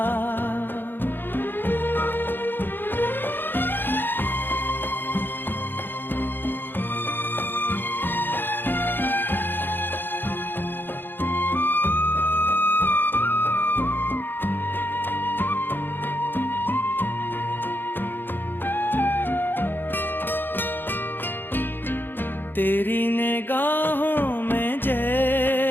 तेरी निगाहों में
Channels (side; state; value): right; late; 0.097 ms